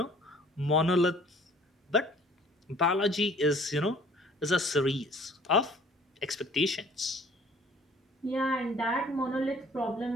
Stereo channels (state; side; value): normal; both; correlation 0.54